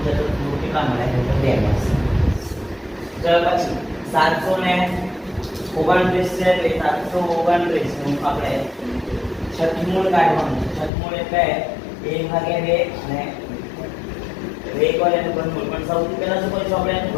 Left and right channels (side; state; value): right; drops out; at 10.9 s